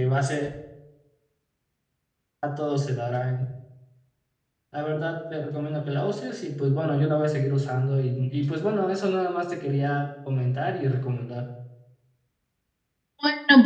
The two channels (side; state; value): both; identical; correlation 1.00